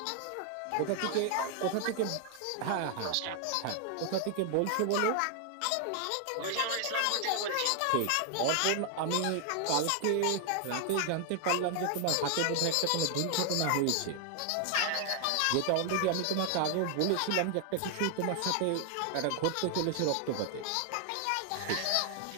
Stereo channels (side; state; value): both; different; correlation 0.00